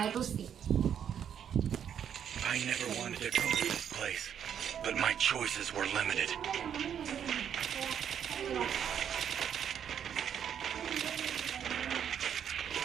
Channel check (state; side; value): quieter; left; 8.8 dB